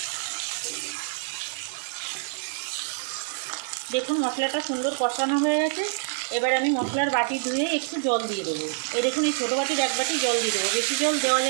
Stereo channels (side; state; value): left; silent; digital silence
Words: দেখুন মশলাটা সুন্দর কষানো হয়ে গেছে। এবার আমি মশলার বাটি ধুয়ে একটু জল দিয়ে দেবো। এই দেখুন এই ছোটো বাটির 1 বাটি জল দিয়ে দেবো, বেশি জল দেওয়া